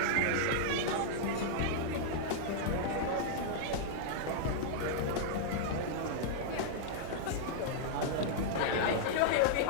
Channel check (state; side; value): different; both; correlation -0.02